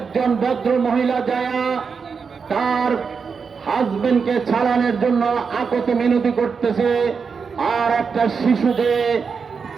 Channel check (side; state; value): left; quieter; 5.6 dB